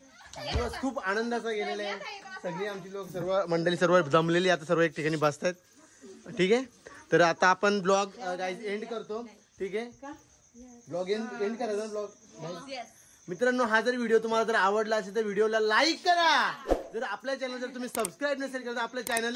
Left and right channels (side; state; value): both; identical; correlation 1.00